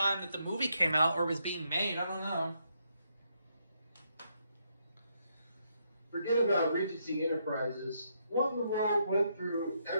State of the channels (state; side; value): inverted; both; correlation -0.77